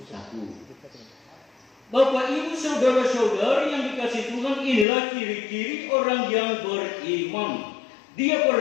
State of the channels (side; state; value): right; drops out; at 4.9 s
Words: saku. Bapak, Ibu, saudara-saudari yang dikasihi Tuhan, inilah ciri-ciri orang yang beriman. Dia